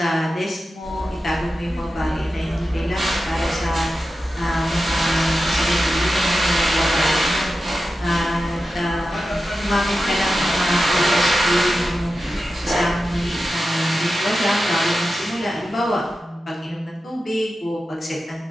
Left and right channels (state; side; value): normal; both; correlation 0.92